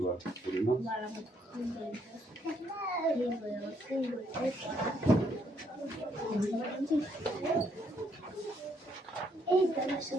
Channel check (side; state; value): both; normal; correlation 0.72